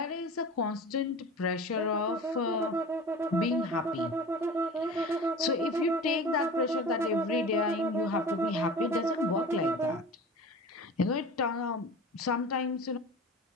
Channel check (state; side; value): normal; both; correlation 0.36